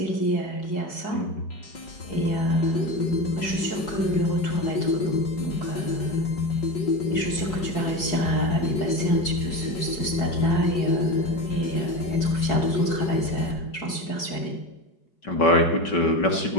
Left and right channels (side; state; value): right; late; 4.7 ms